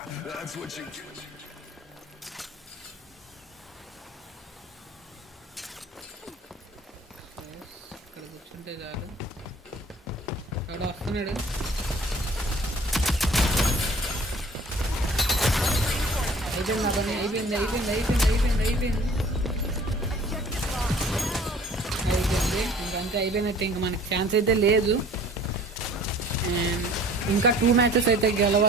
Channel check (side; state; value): both; normal; correlation 0.50